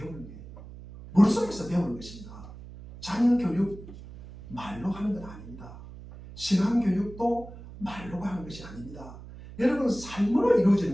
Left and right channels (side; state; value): right; noise; hum, 15 dB below the sound